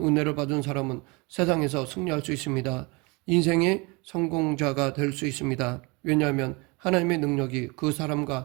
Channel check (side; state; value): left; quieter; 27.5 dB